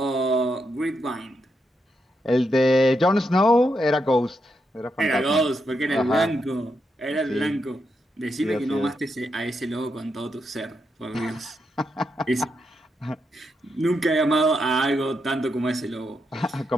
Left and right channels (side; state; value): both; normal; correlation 0.82